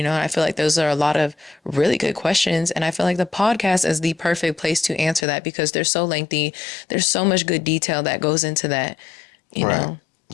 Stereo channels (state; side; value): drops out; right; at 5.2 s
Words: know, and I feel like those are a lot of really good questions. And I feel like the podcast is the perfect place to answer that because they're so lengthy. There's so much good detail that goes into that, you Right. know.